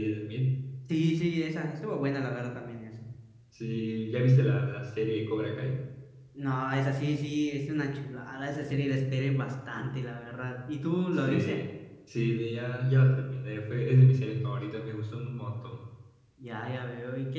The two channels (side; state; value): both; identical; correlation 1.00